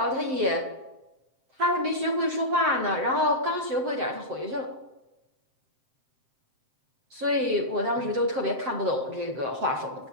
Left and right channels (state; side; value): late; left; 7.7 ms